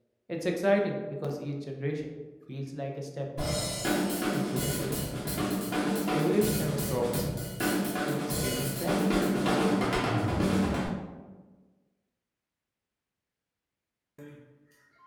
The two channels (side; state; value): both; identical; correlation 1.00